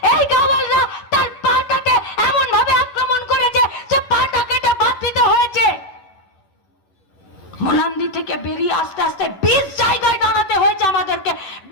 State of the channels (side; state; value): right; late; 11 ms